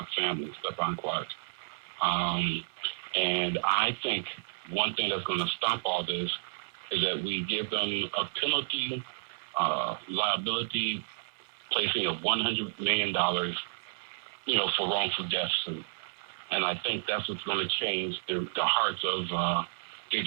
family, Stephon Clark. And I think one thing that's going to stop all this is that we give them a penalty, liability, placing of $100 million, for wrongful deaths. And I think that's what's going to change the hearts of these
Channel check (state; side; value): silent; left; 55 dB below the other